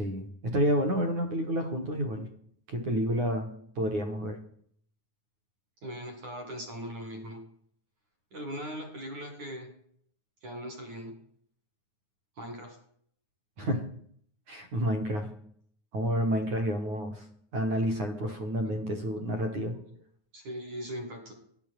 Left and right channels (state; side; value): late; left; 9.6 ms